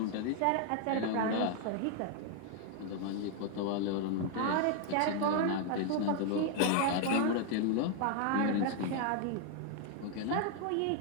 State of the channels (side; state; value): both; different; correlation 0.00